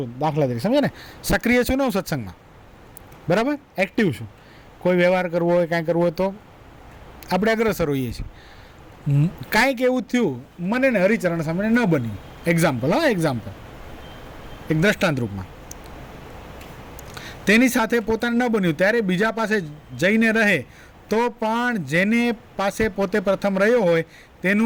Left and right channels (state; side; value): identical; both; correlation 1.00